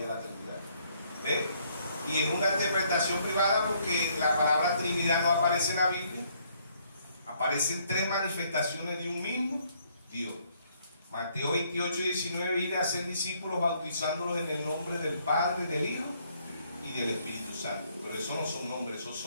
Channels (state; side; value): inverted; both; correlation -0.68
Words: la Trinidad. ¿Ve? Y es una interpretación privada porque la palabra Trinidad no aparece en la Biblia. Aparecen 3 manifestaciones de un mismo Dios. Mateo 28:19, ir a ser discípulos bautizándolos en el nombre del Padre, del Hijo y del Espíritu Santo. Pero eso no son nombres, esos